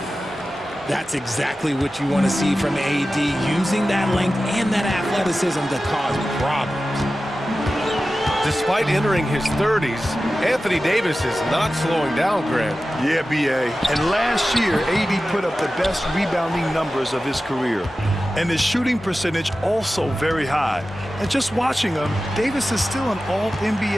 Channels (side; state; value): both; normal; correlation 0.94